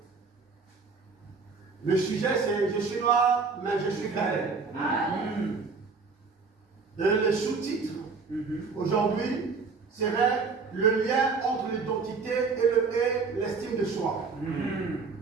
le sujet c'est « Je suis noir, mais je suis belle ». Le sous-titre aujourd'hui serait le lien entre l'identité et l'estime de soi.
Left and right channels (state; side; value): quieter; left; 4.7 dB